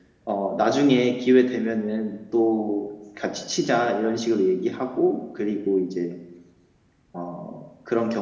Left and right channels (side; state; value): both; identical; correlation 1.00